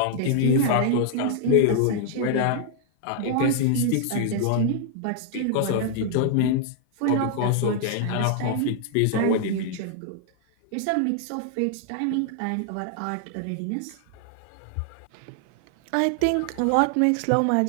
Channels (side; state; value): both; different; correlation 0.00